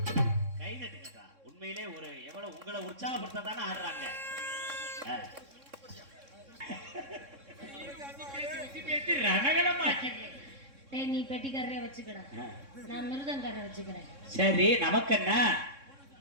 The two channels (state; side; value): late; left; 3.6 ms